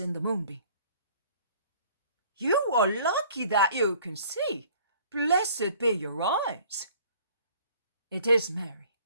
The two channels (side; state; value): both; inverted; correlation -0.54